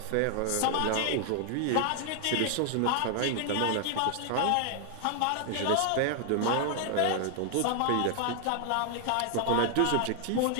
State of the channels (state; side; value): different; both; correlation 0.00